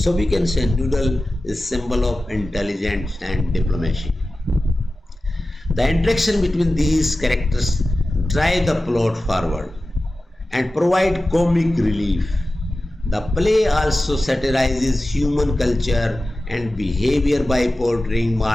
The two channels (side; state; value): both; normal; correlation 0.95